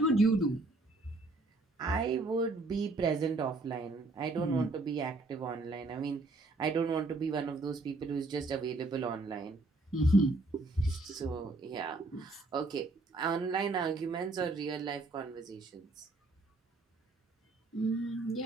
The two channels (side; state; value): left; quieter; 3.2 dB